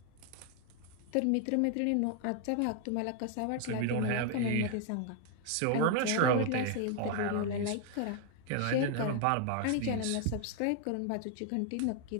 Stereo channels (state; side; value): different; both; correlation 0.00